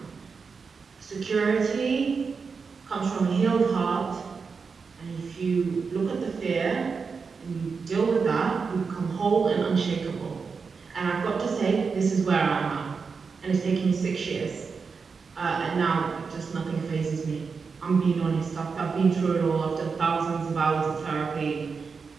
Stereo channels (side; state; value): left; quieter; 5.2 dB